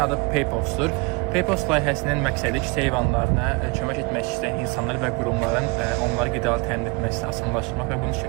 adı PayPost-dur. PayPost layihəsinin məqsədi küçə heyvanlarına kömək etmək istəyən insanlar və qurumların onları qidalı təmin etməsini asanlaşdırmaq və bunu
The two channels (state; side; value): quieter; left; 28.9 dB